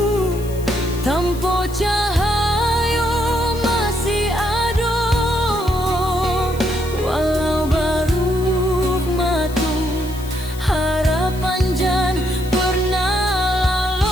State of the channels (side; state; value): left; noise; hiss, 17 dB below the sound